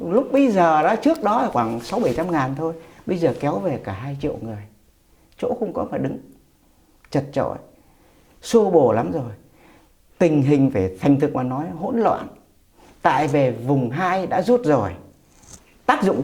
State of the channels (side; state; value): both; identical; correlation 1.00